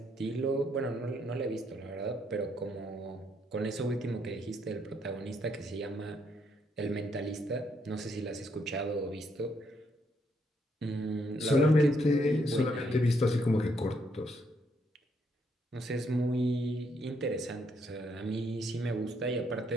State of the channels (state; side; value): normal; both; correlation 0.73